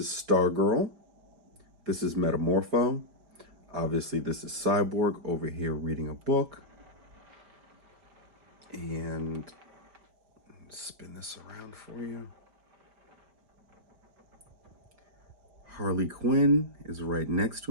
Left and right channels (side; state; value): left; late; 5.1 ms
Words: Stargirl. This is Metamorpho. Obviously, this is Cyborg over here reading a book. And spin this around for you. Harley Quinn is right next